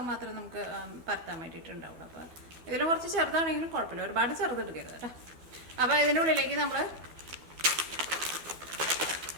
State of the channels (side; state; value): left; late; 12 ms